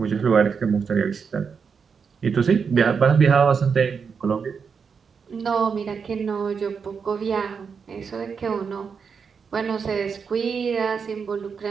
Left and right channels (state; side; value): quieter; left; 6.0 dB